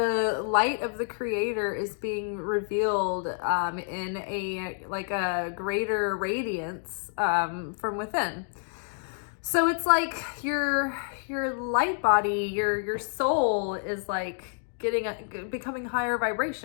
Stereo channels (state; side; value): silent; right; digital silence